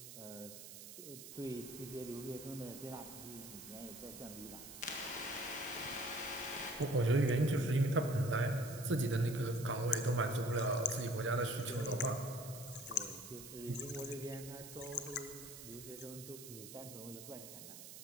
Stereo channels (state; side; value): noise; right; hiss, 13 dB below the sound